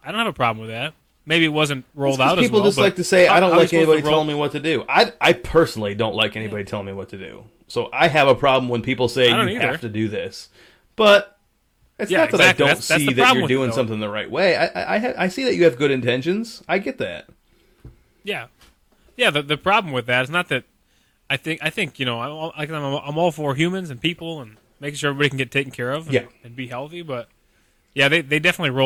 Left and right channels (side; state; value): both; identical; correlation 1.00